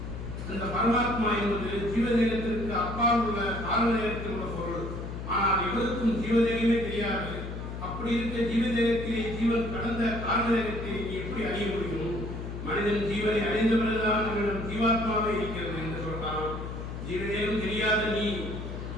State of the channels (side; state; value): left; noise; hum, 7 dB below the sound